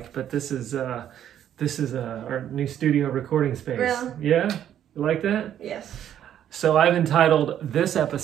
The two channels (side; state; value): left; quieter; 10.4 dB